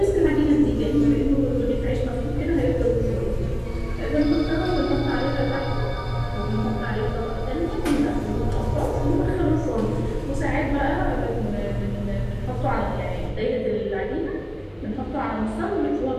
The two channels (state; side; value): identical; both; correlation 1.00